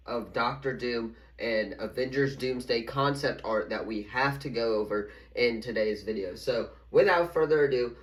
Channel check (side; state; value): both; identical; correlation 1.00